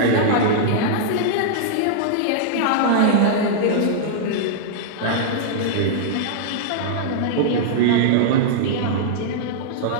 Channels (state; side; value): different; both; correlation -0.02